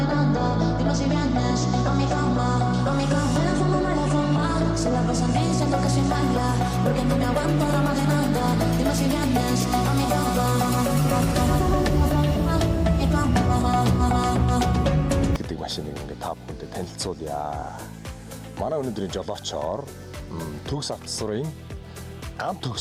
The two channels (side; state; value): both; identical; correlation 1.00